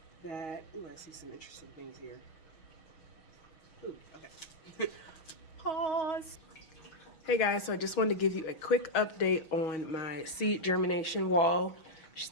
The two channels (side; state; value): right; late; 6.3 ms